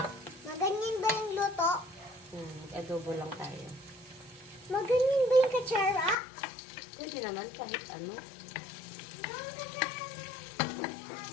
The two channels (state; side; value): drops out; right; at 6.2 s